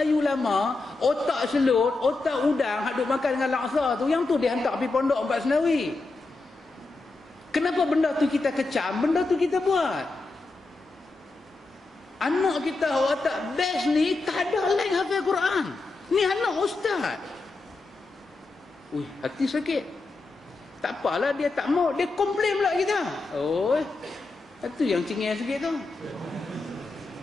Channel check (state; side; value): quieter; right; 3.4 dB